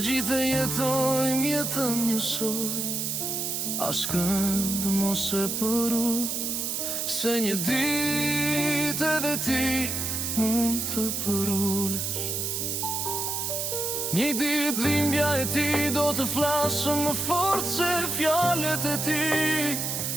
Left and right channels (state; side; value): noise; right; hiss, 1 dB below the sound